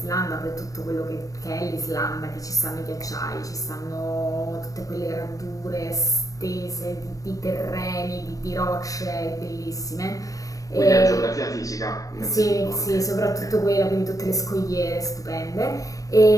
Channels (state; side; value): late; right; 0.16 ms